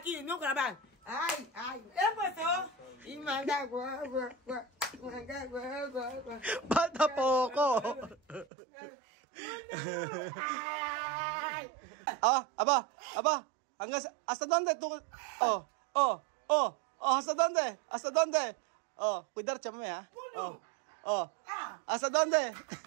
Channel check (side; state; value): left; drops out; at 8.5 s